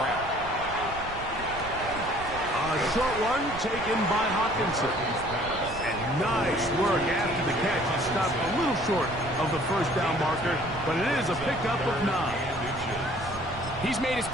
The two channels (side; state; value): right; noise; rumble, 13 dB below the sound